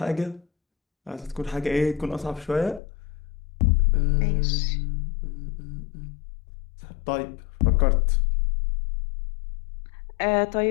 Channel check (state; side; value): drops out; right; at 2.8 s